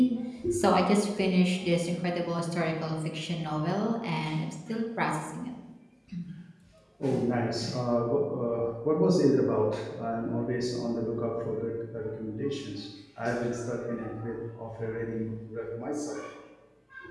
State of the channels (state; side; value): identical; both; correlation 1.00